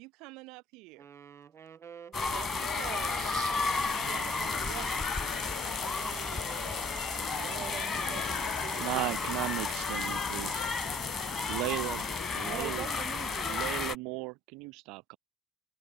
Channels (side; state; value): both; normal; correlation 0.59